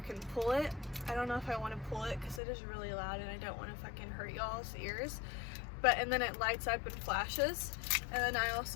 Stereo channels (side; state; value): right; drops out; at 2.4 s